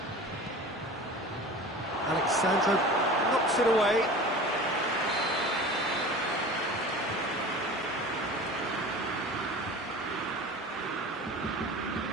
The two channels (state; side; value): normal; both; correlation 0.37